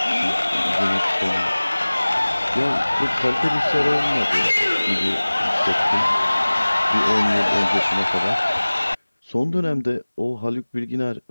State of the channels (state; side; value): inverted; both; correlation -1.00